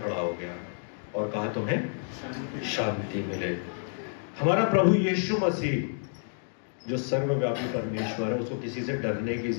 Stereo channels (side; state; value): right; silent; digital silence